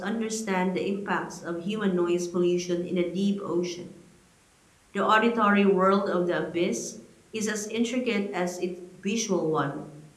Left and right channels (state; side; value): identical; both; correlation 1.00